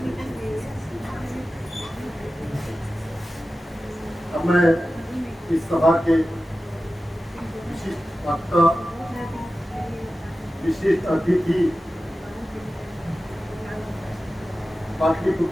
अब मैं इस सभा के विशिष्ट वक्ता, विशिष्ट अतिथि,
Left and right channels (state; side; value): normal; both; correlation 0.94